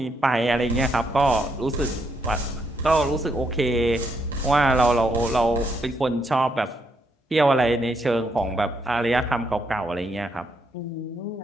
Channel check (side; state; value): both; normal; correlation 0.76